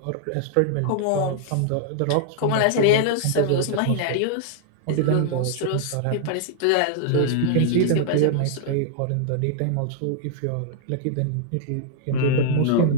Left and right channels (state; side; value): different; both; correlation -0.01